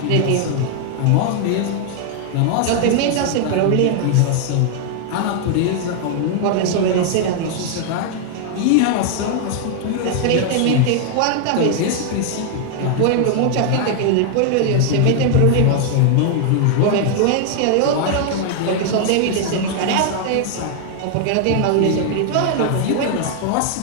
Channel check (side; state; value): both; different; correlation 0.00